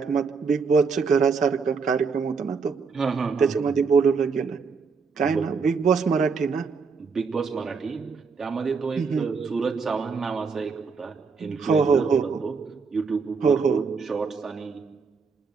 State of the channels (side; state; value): left; quieter; 5.2 dB